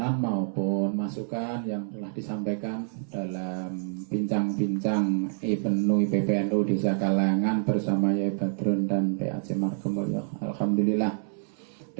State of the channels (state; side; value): silent; left; 60 dB below the other